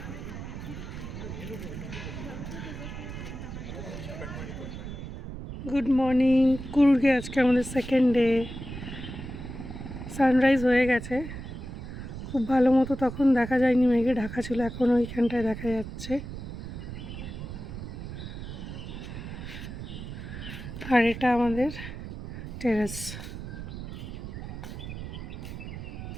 গুড মর্নিং কুর্গে। আজকে আমাদের সেকেন্ড ডে। সানরাইজ হয়ে গেছে, খুব ভালো মতো তখন দেখা যায়নি, মেঘে ঢাকা ছিল। এখন ওইখানটায় দেখা যাচ্ছে। আর এটা আমাদের টেরেস।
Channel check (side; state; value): right; noise; rumble, 9 dB below the sound